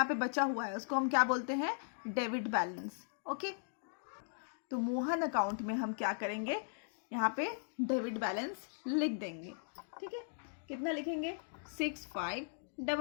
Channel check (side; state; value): right; silent; digital silence